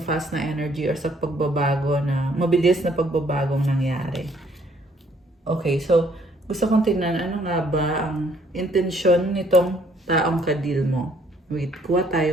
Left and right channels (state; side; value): normal; both; correlation 0.64